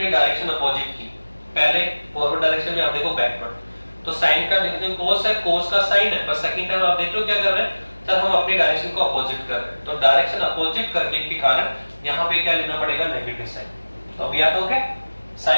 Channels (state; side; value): inverted; both; correlation -1.00